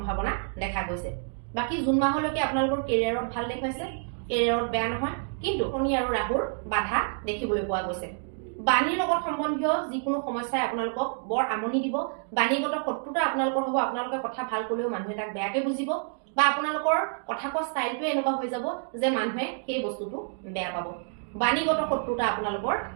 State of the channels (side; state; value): left; silent; 59 dB below the other